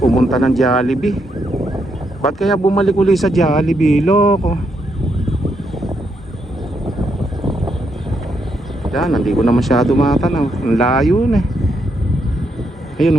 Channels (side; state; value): both; normal; correlation 0.78